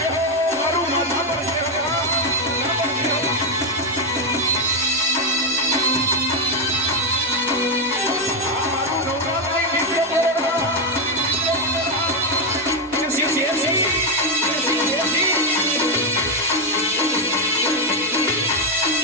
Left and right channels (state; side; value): normal; both; correlation 0.05